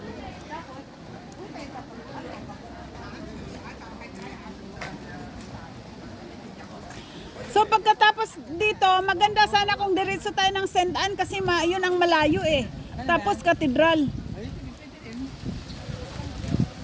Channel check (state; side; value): identical; both; correlation 1.00